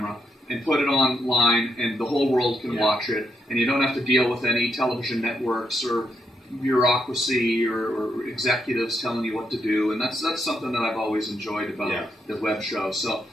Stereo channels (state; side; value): normal; both; correlation 0.80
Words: and put it online, and the whole world can watch it, and you don't have to deal with any television networks or bureaucracy or executives telling you what to do, and that's something that I've always enjoyed about the web show. So